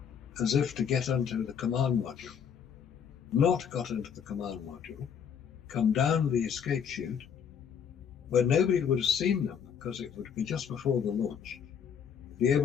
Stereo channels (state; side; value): quieter; right; 7.6 dB